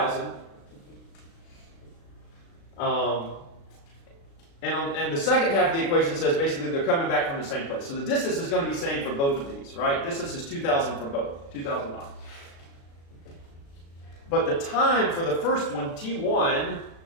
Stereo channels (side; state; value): right; late; 36 ms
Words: And the second half of the equation says basically they're coming back from the same place. So the distance is going to be the same for both of these, right? Distance is 2,000 for both, 2,000 miles. But the time for the first one, T1,